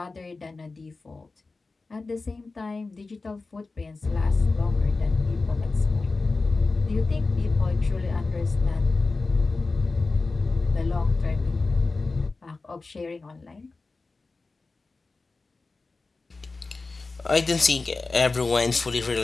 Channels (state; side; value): quieter; right; 3.7 dB